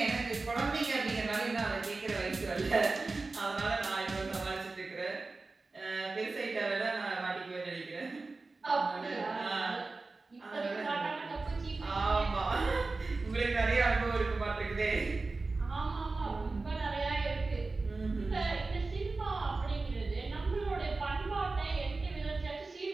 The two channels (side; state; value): left; quieter; 3.6 dB